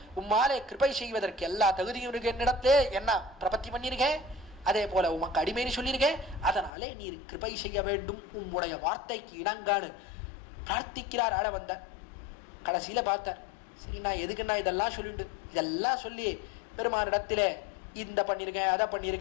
உம்மாலே கிருபை செய்வதற்கு எல்லா தகுதியும் இருக்கு. என்னிடத்திலே என்ன பிரபத்தி பண்ணிருக்கேன், அதே போல உமக்கு அடிமைன்னு சொல்லியிருக்கேன், அதனாலே நீர் கிருபை செய்ய வேண்டும் உம்முடைய வார்த்தைக்கு இணங்கான்னு பிரார்த்திக்கிறார். ஆள வந்த கடைசியில பார்த்தார். சரி, நான் எதுக்குன்னா இதெல்லாம் சொல்லிட்டு இதெல்லாம் சொல்லி பெருமானிடத்திலே இந்த பண்ணியிருக்கேன் அதை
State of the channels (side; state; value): right; drops out; at 6.7 s